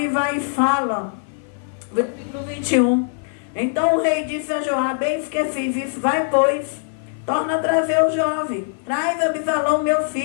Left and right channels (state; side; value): silent; right; 56 dB below the other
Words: vai e fala, versículo 21. Então o rei disse a Joabe: eis que fiz isso, vai, pois, torna a trazer o jovem, traz Abisalão, meu